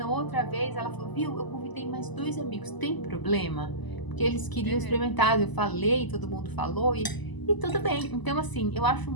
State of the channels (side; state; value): right; late; 1.0 ms